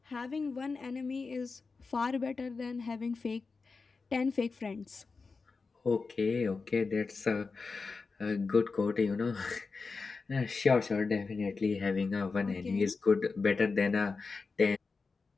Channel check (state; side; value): quieter; right; 4.4 dB